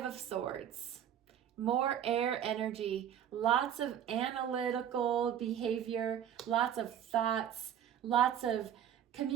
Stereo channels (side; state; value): left; quieter; 9.8 dB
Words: of Swords. More air energy. Lots of analytical behavior. Lots of thoughts. Lots of